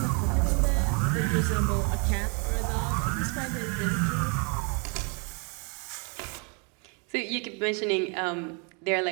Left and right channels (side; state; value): left; quieter; 34.9 dB